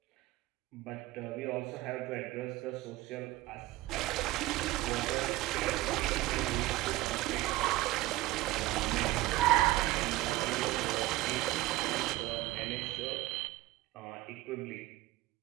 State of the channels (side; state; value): left; quieter; 17.9 dB